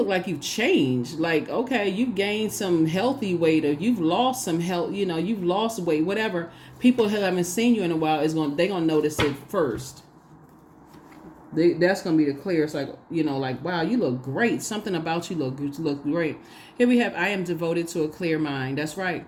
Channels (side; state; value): both; identical; correlation 1.00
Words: like you've changed. Like, okay, you've gained some healthy weight, or you've lost some health, you've lost weight, whatever. People who haven't seen you in a while, they're going to notice it first. That's going to be the clear. It's like, like, wow, you look great. Something about you look great. Here we have, I am devoted to a clear mind. That's right.